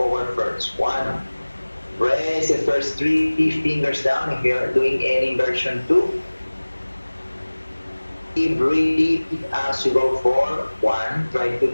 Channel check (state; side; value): inverted; both; correlation -1.00